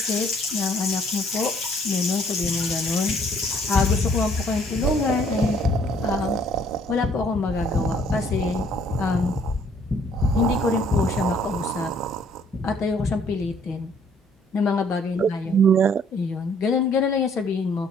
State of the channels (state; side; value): normal; both; correlation 0.62